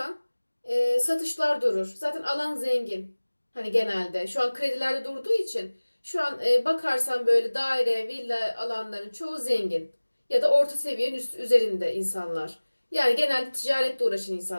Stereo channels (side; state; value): both; inverted; correlation -1.00